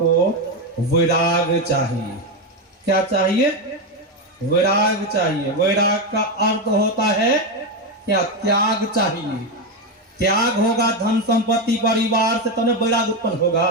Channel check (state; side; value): normal; both; correlation 0.10